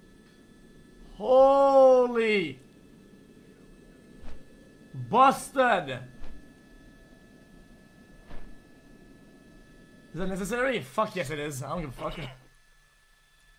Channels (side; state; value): both; identical; correlation 1.00